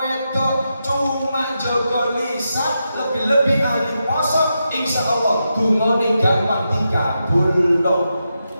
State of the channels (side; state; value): both; inverted; correlation -0.87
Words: wedok cuma jaga lisan. lebih ahli poso, insya Allah dungane gampang dikabul dong.